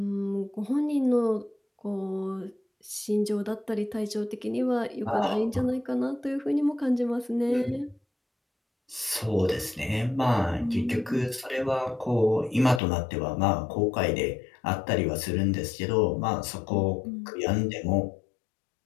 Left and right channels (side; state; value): right; drops out; at 12.8 s